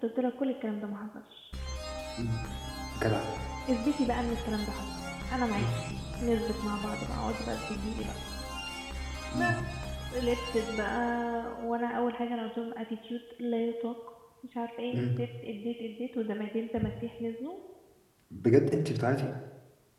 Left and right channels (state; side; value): identical; both; correlation 1.00